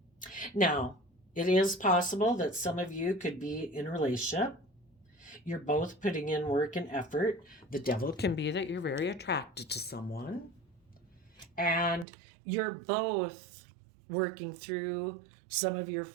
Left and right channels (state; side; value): drops out; left; at 12.1 s